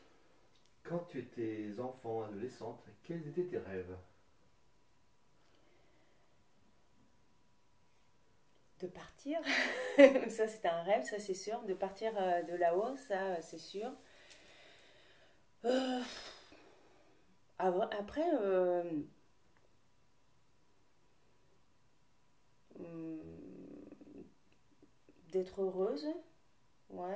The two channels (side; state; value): both; identical; correlation 1.00